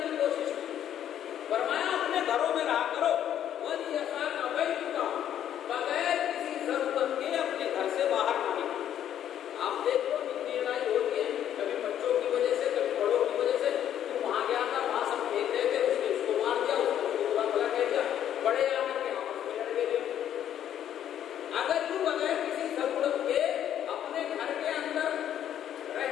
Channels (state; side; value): quieter; right; 10.4 dB